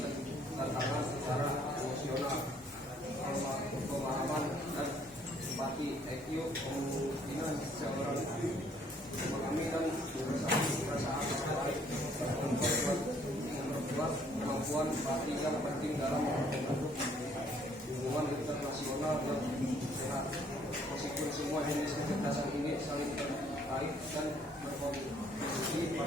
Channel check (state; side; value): normal; both; correlation 0.63